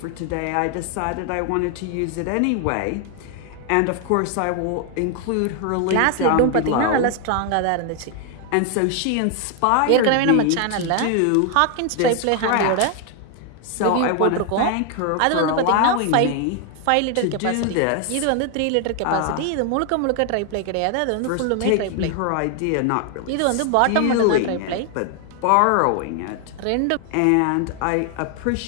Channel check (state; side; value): different; both; correlation 0.00